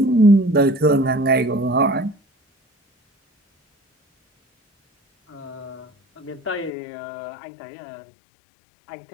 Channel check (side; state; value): right; drops out; at 6.7 s